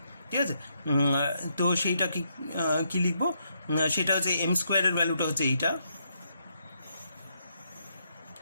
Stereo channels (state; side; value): inverted; both; correlation -0.77